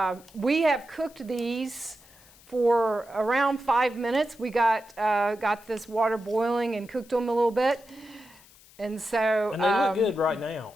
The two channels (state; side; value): noise; left; hiss, 25 dB below the sound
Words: We have cooked these for around 5 minutes. We got this water boiling and cooked them a little bit. And so. And they look good right now.